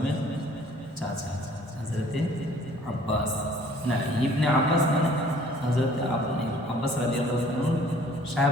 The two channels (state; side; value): normal; both; correlation 0.55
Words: চাচা হযরতে আব্বাস, না ইবনে আব্বাস মানে হযরতে আব্বাস রাদিয়াল্লাহু আনহু